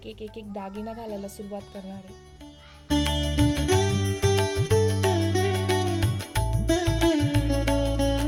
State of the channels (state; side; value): identical; both; correlation 1.00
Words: एक एक एक दागिना घालायला सुरुवात करणार आहे.